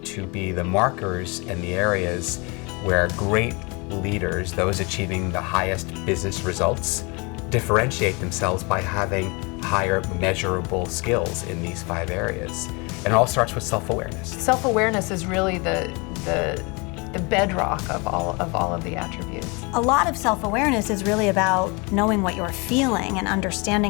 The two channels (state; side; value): quieter; right; 29.0 dB